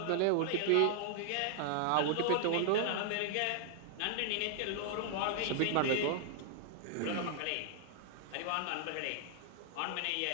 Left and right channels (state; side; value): different; both; correlation -0.01